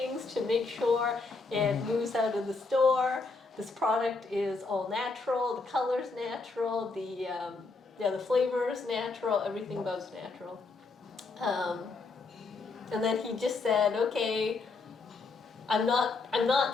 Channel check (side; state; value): right; quieter; 3.9 dB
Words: to make sure it moves out of the store. This product is all natural. The color's natural. The flavor is natural. Everything about's natural. And then he just said, okay, I'm